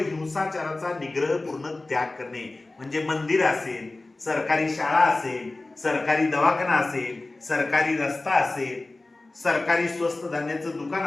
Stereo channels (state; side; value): quieter; right; 3.0 dB